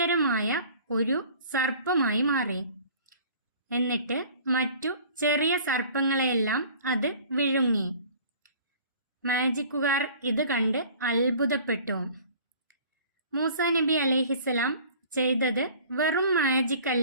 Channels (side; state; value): both; inverted; correlation -0.48